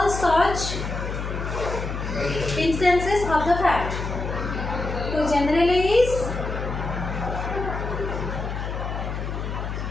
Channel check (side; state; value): left; noise; hum, 4 dB below the sound